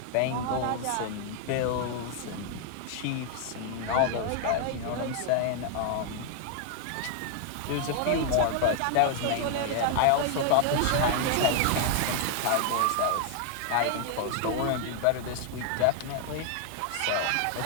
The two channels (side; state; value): both; different; correlation 0.00